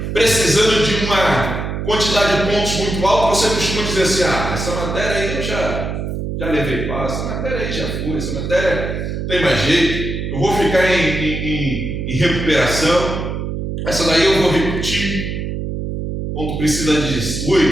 precisando de uma quantidade de pontos muito alta, você costuma dizer assim: essa matéria aí eu já levei passo, essa matéria aí já foi, essa matéria tem mais jeito, eu vou ficar em recuperação, essa daí eu vou repetir, quando precisa de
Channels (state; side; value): noise; right; hum, 4 dB below the sound